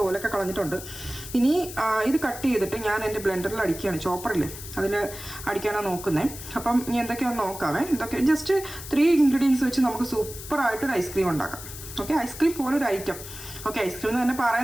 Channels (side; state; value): left; noise; hiss, 12 dB below the sound